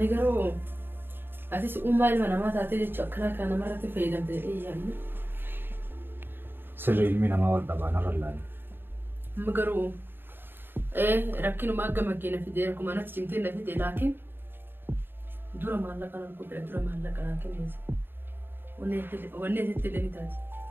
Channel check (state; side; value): late; left; 0.099 ms